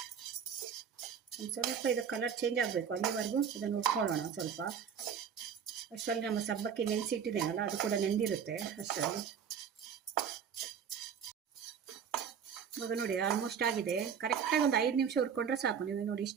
ಒಂದು ಸ್ವಲ್ಪ ಇದು ಕಲರ್ ಚೇಂಜ್ ಆಗಬೇಕು, ಅಲ್ಲಿವರೆಗೂ ಇದನ್ನು ಹುರ್ಕೊಳ್ಳೋಣ ಸ್ವಲ್ಪ. ಅಷ್ಟರಲ್ಲಿ ನಮ್ಮ ಸಬ್ಬಕ್ಕಿ ನೆನೆಸಿಟ್ಟಿದ್ದೇನಲ್ಲ, ಅದು ಕೂಡ ನೆಂದಿರುತ್ತೆ ಅಷ್ಟರಲ್ಲಿ. ಇವಾಗ ನೋಡಿ ಆಲ್ಮೋಸ್ಟ್ ಆಗಿದೆ. ಕರೆಕ್ಟಾಗಿ ಒಂದು 5 ನಿಮಿಷ ಹುರ್ಕೊಂಡ್ರೆ ಸಾಕು. ನೀವು ನೋಡಿ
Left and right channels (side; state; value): left; quieter; 7.5 dB